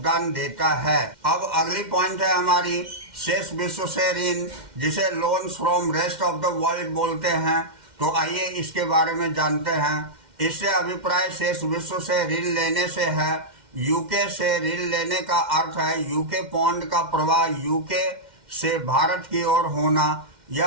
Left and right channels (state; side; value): late; left; 2.1 ms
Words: देता है। अब अगली पॉइंट है हमारी शेष विश्व से ऋण, जिसे loans from rest of the world बोलते हैं। तो आइए इसके बारे में जानते हैं। इससे अभिप्राय शेष विश्व से ऋण लेने से है। यूके से ऋण लेने का अर्थ है यूके पौंड का प्रवाह यूके से भारत की ओर होना,